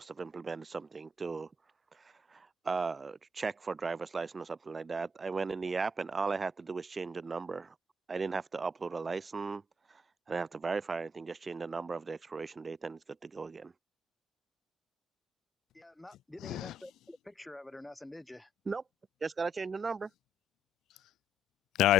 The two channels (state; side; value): normal; both; correlation 0.72